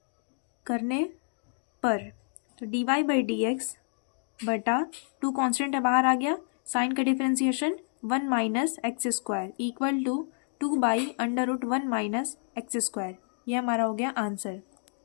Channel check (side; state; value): right; silent; 58 dB below the other